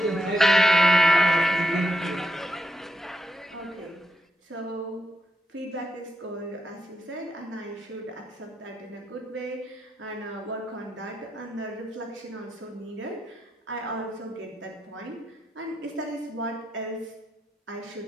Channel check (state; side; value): normal; both; correlation 0.82